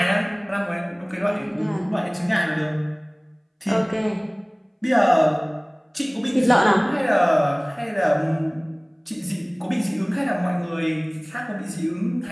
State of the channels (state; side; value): identical; both; correlation 1.00